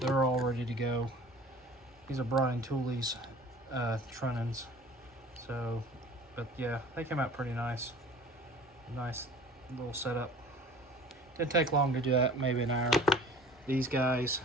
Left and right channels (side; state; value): both; normal; correlation 0.45